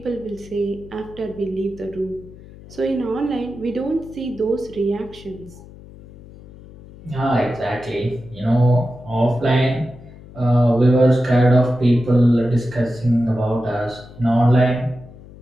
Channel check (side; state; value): left; noise; hum, 19 dB below the sound